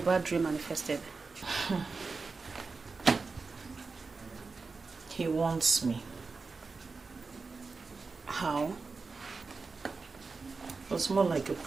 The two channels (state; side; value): quieter; left; 4.3 dB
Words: bad dream manifested. He wants me. How? It was more like a